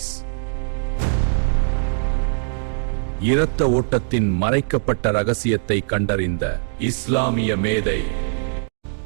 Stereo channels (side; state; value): left; silent; digital silence